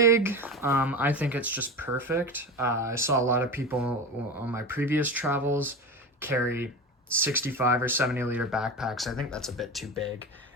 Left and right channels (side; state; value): both; normal; correlation 0.25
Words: I think it's just perfect. I saw a lot of people on my previous travels carry 65 or 70-liter backpacks. I think that's a bit too big.